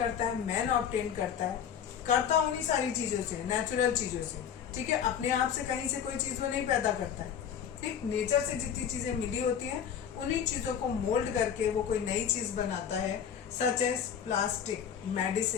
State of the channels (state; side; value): quieter; right; 8.4 dB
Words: है? मैन ऑब्टेन करता उन्हीं सारी चीजों से, नेचुरल चीजों से। ठीक है, अपने आप से कहीं से कोई चीज वो नहीं पैदा करता है। ठीक, नेचर से जितनी चीजें मिली होती हैं उन्हीं चीजों को मोल्ड करके वो कोई नई चीज बनाता है, such as plastic,